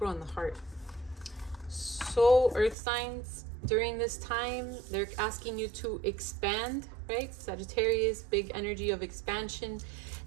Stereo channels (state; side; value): drops out; left; at 2.8 s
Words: and the heart. So, earth signs, during this time, they're asking you to expand, right? Sagittarius, big energy of expansion.